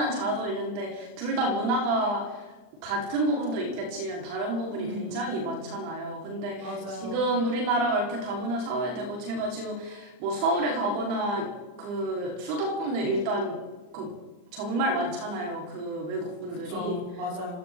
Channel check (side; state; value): left; late; 39 ms